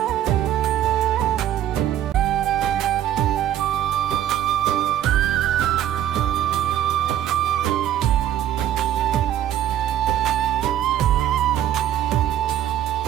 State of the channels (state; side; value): quieter; left; 11.4 dB